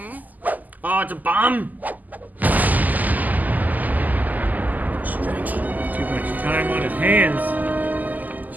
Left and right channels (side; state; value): left; late; 0.081 ms